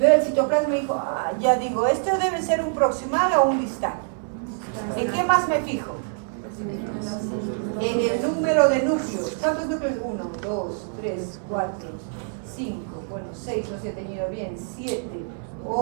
el citoplasma y digo, ya digo, esto debe ser un proximal o un distal. ¿En qué más me fijo? En el número de núcleos. ¿Cuántos núcleos? 1, 2, 3, 4, 5, bueno, 6, no se ha tenido bien, 7,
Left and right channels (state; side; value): silent; left; 62 dB below the other